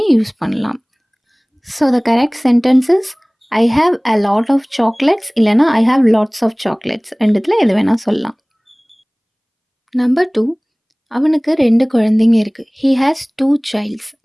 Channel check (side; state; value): both; identical; correlation 1.00